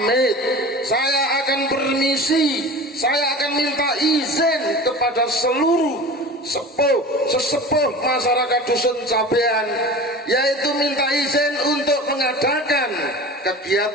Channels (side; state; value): both; normal; correlation 0.36